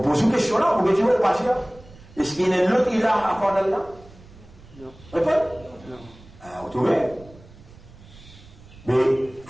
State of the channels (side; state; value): right; noise; rumble, 22 dB below the sound